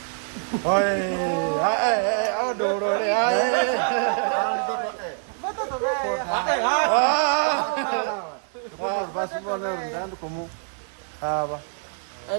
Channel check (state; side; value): silent; left; 62 dB below the other